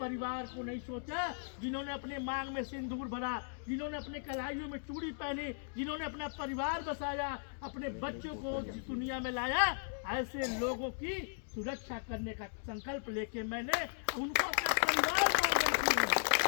परिवार को नहीं सोचा। जिन्होंने अपने मांग में सिंदूर भरा, जिन्होंने अपने कलाइयों में चूड़ी पहनी, जिन्होंने अपना परिवार बसाया, अपने बच्चों को दुनिया में लाया, ऐसे लोगों की सुरक्षा करने का संकल्प लेके मैंने उनको अपना परिवार मान बैठी हूँ।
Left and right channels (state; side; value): silent; right; digital silence